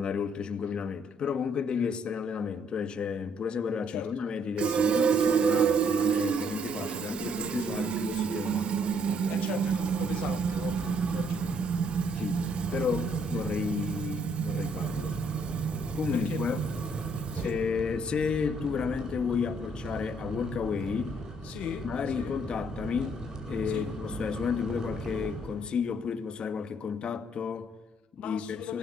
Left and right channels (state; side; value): normal; both; correlation 0.67